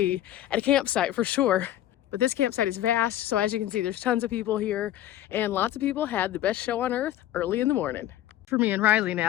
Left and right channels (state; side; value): quieter; right; 13.0 dB